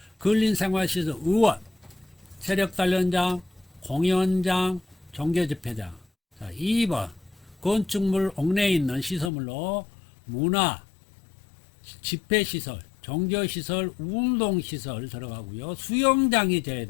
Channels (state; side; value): drops out; right; at 9.3 s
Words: 근린생활시설 의원, 세력단련장, 공연장, 종교집회장. 자, 2번 건축물 옥내에 있는 시설물로 문화, 집회시설, 종교시설, 운동시설 들어가고요. 수영장이 돼야